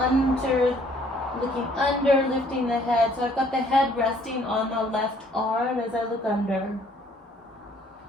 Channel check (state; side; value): normal; both; correlation 0.61